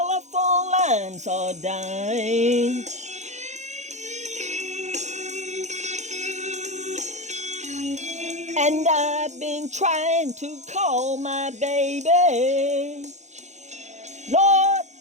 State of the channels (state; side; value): late; left; 0.33 ms